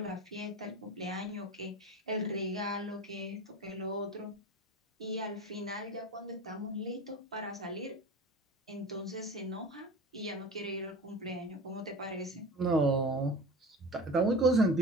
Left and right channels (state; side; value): normal; both; correlation 0.32